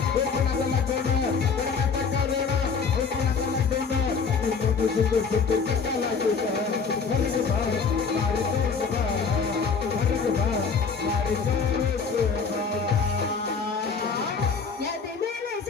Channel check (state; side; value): quieter; right; 5.5 dB